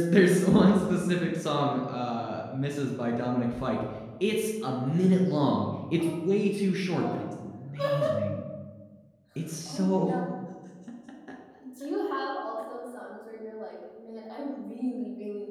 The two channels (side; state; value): both; identical; correlation 1.00